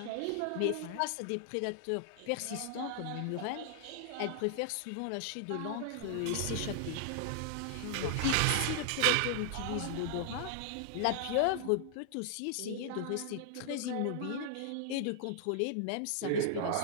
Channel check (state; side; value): different; both; correlation 0.00